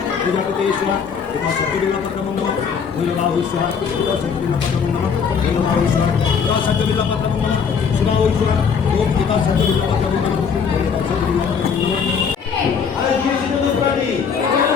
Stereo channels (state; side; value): quieter; right; 6.4 dB